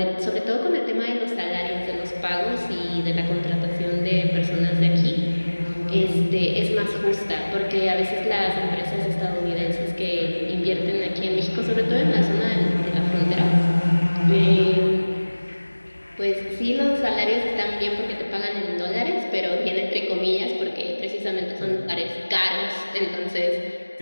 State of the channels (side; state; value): both; inverted; correlation -1.00